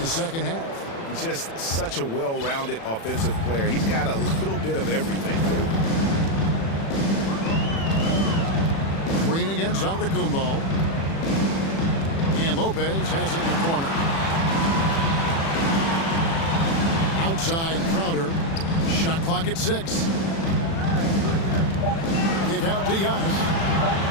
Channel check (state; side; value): late; right; 36 ms